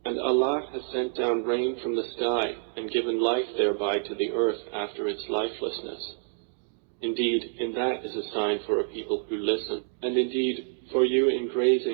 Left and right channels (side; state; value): left; silent; digital silence